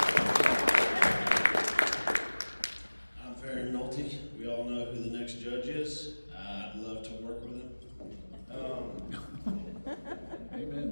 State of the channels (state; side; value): inverted; both; correlation -1.00